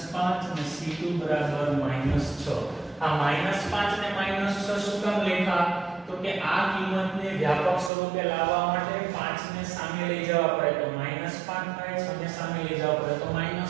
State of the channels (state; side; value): drops out; left; at 7.9 s